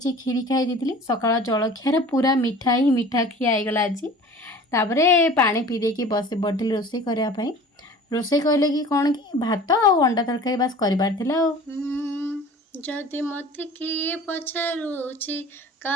खीरी खाई सकाळ जलखिया पूरा मिठा ही मिठा खियागला आज। तापर पानी पी देकी बस पड़ी रोषे करने रोषे कहले कि कौन कि भात और अंडा तरकारी बास करार जदि मत किए पचारुची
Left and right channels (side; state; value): both; normal; correlation 0.43